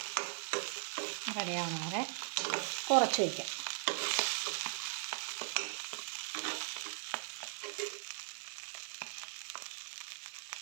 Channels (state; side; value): silent; left; 52 dB below the other